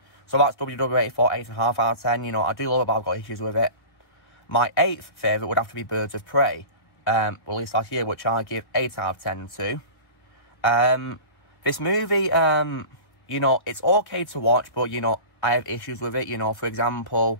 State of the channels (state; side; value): late; right; 1.5 ms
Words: so that's WW84, 8.5 out of 10. You know, I do love it, but I've got issues with it. My eighth favourite would have to be Birds of Prey, released last year, which I give 8 out of 10 to. This movie, you know, it's okay to watch, but, you know, I have issues with it. You know, for example,